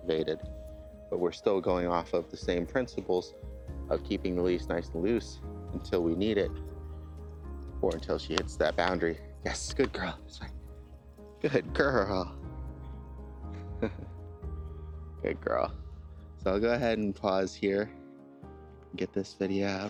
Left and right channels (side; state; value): both; identical; correlation 1.00